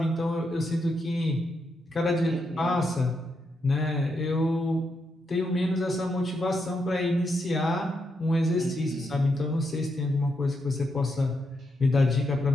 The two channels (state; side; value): normal; both; correlation 0.82